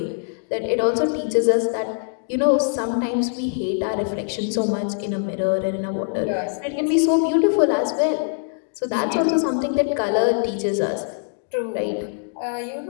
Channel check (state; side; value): silent; right; digital silence